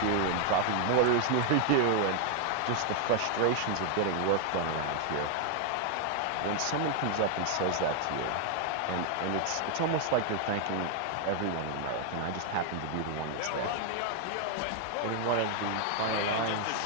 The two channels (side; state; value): both; different; correlation 0.00